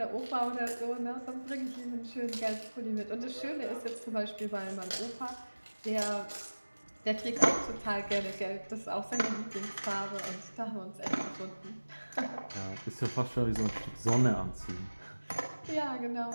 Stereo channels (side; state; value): both; inverted; correlation -1.00